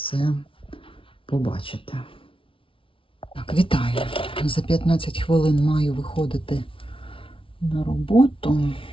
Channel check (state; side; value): late; right; 0.25 ms